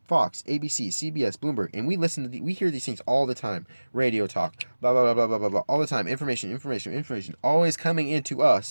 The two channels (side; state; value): both; inverted; correlation -1.00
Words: Fox, ABC, CBS, Bloomberg, and we hear these things all the time. Radio talk, blah blah blah blah blah blah blah, all the time. Information, always coming into